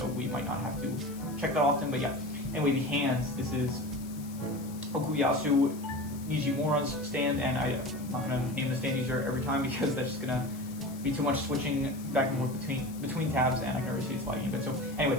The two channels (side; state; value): left; noise; hiss, 19 dB below the sound